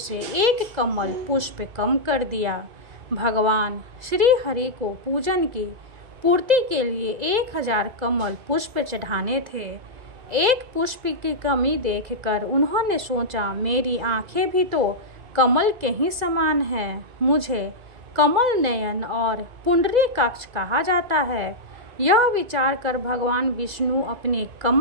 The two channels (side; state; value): left; late; 2.0 ms